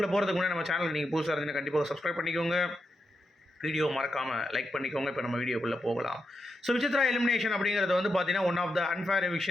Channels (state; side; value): normal; both; correlation 0.86